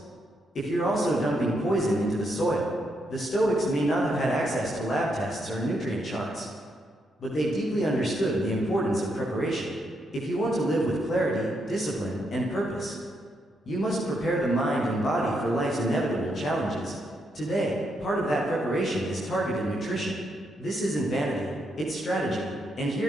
if you're also dumping poison into the soil. The Stoics may not have had access to lab tests or nutrient charts, but they deeply understood the importance of preparation. If you want to live with clarity, discipline, and purpose, you must prepare the mind and body for life's inevitable challenges. Today, part of that preparation is targeted nutrition. This isn't vanity, it's strategy. And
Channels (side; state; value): both; normal; correlation 0.79